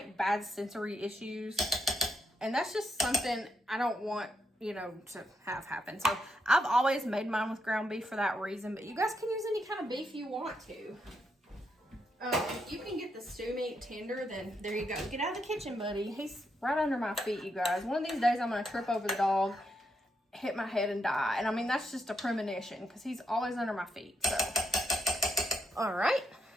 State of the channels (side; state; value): both; normal; correlation 0.81